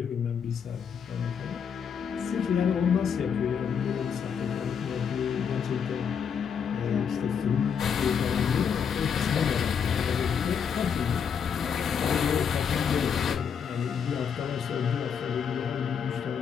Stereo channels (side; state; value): right; quieter; 7.2 dB